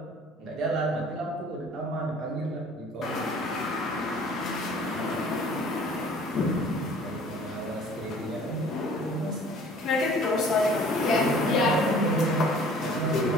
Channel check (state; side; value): normal; both; correlation 0.50